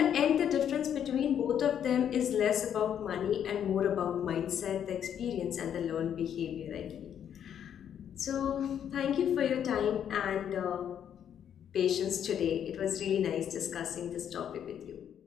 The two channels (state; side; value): quieter; right; 9.2 dB